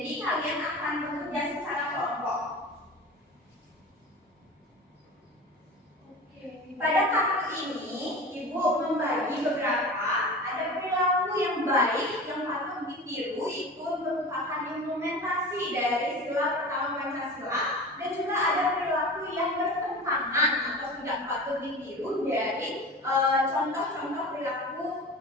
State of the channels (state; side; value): normal; both; correlation 0.34